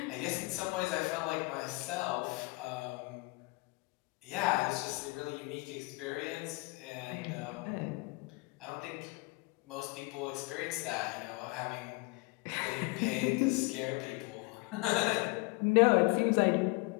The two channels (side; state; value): right; quieter; 26.0 dB